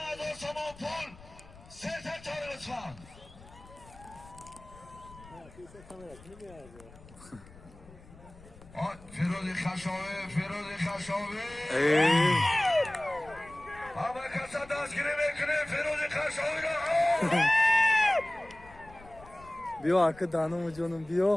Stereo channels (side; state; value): left; noise; rumble, 21 dB below the sound